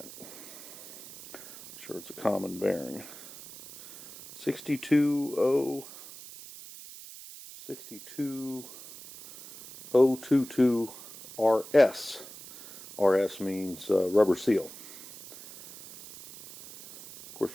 I'm sure it's a common bearing. 62022 RS. RS means rubber seal. Of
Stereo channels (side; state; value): right; noise; hiss, 16 dB below the sound